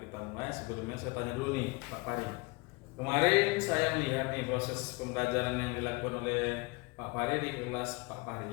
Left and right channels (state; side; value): quieter; right; 26.5 dB